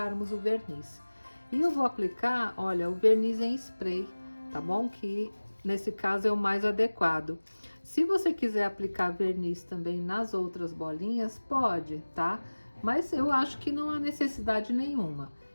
o verniz. E eu vou aplicar, olha, o verniz em spray, tá bom? Que nesse caso é o mais adequado. Se você quiser aplicar verniz também nas outras bolinhas, pode, tá? Mas eu acho que não há necessidade nenhuma.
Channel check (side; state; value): both; inverted; correlation -1.00